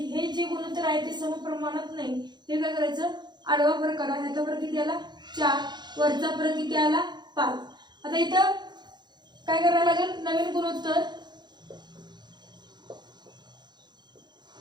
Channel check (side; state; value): left; late; 0.21 ms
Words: जे गुणोत्तर आहे ते समप्रमाणात नाही. ते काय करायचं, आडवा फरक काढा, यातला फरक किती आला 4, वरचा फरक किती आला 5. आता इथं काय करायला लागेल, नवीन गुणोत्तर.